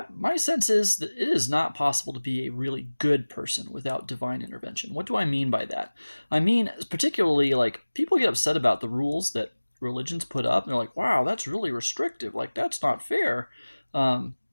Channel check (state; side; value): inverted; both; correlation -1.00